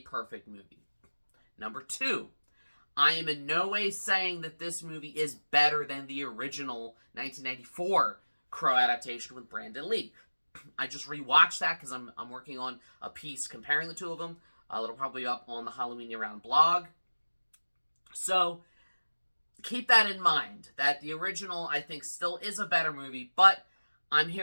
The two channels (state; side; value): inverted; both; correlation -1.00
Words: movie. Number two, I am in no way saying that this movie is better than the original 1994 Crow adaptation with Brandon Lee. I just rewatched that because I'm working on a piece comparing the two of them. It'll probably be up on the Halloween Year Round blog. So keep that in mind, that the original, I think, still is a better movie, but I'm